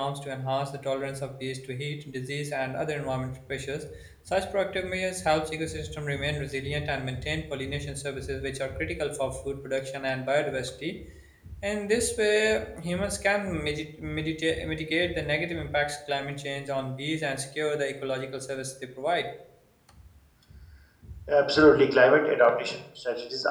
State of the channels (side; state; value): both; identical; correlation 1.00